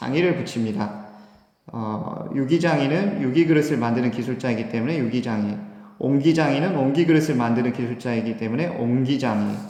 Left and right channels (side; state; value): both; identical; correlation 1.00